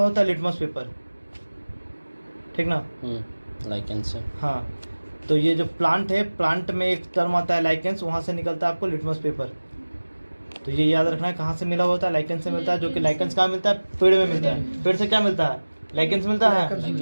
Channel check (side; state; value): both; inverted; correlation -1.00